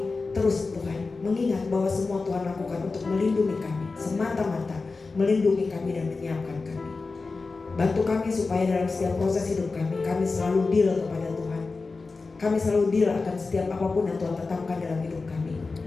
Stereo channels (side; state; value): right; quieter; 4.0 dB